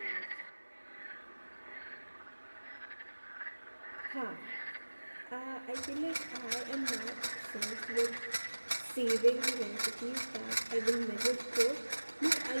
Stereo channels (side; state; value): both; inverted; correlation -1.00